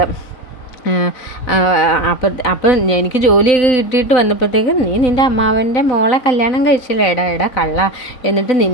അപ്പം എനിക്ക് ജോലിയൊക്കെ കിട്ടിയിട്ട് വന്നപ്പോഴത്തേക്കും നീ നിൻ്റെ അമ്മാവൻ്റെ മോളെ കല്യാണം കഴിച്ചില്ലേ, എടാ കള്ള, എന്നിട്ട്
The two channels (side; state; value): right; late; 3.9 ms